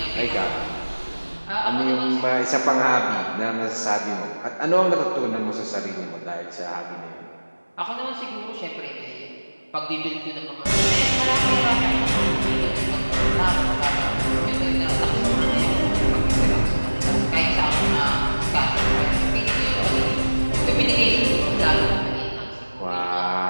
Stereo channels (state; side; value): inverted; both; correlation -1.00